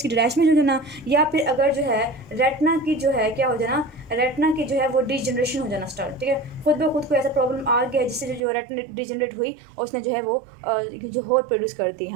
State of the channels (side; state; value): left; drops out; at 8.4 s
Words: की डिटैचमेंट हो जाना, या फिर अगर जो है रेटिना की जो है क्या हो जाना, रेटिना की जो है वो डिजनरेशन हो जाना स्टार्ट, ठीक है। खुद ब खुद को ऐसा प्रॉब्लम आ गया जिससे जो रेटिना डिजनरेट हुई और उसने जो है वो जो होर प्रोड्यूस कर दी